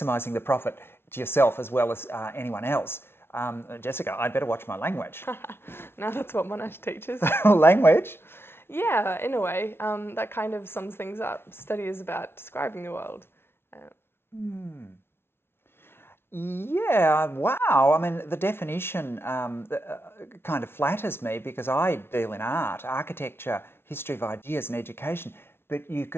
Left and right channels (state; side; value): late; right; 0.12 ms